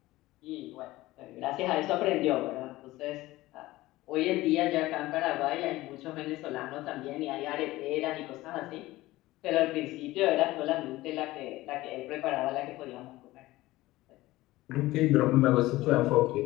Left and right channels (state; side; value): quieter; right; 18.0 dB